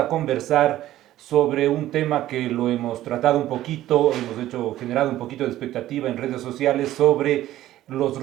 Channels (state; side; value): quieter; left; 14.1 dB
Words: conversar sobre un tema que lo hemos tratado un poquito, generado un poquito de expectativa en redes sociales sobre los